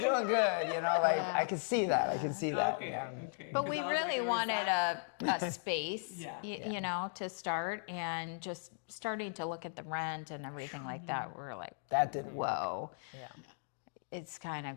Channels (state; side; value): silent; right; digital silence